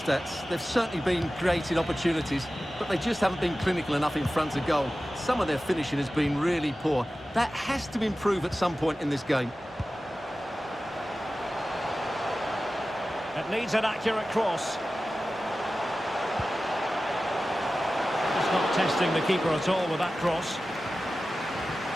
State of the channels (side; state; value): both; normal; correlation 0.95